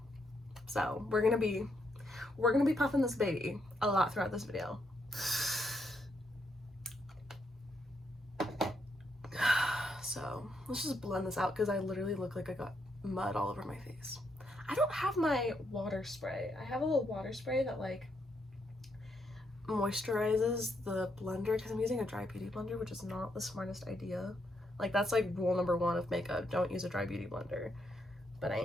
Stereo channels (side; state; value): both; normal; correlation 0.77